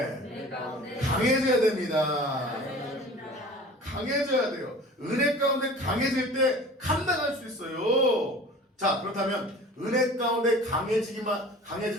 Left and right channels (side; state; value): both; normal; correlation 0.42